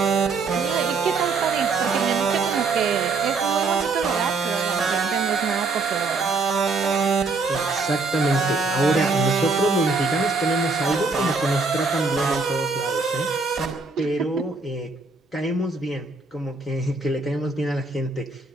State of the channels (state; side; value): quieter; left; 3.9 dB